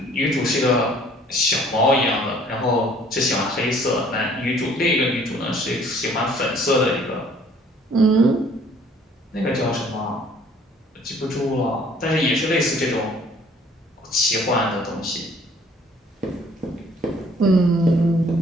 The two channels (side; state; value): both; normal; correlation 0.57